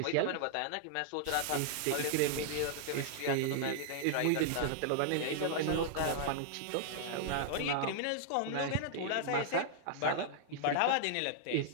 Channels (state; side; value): different; both; correlation -0.01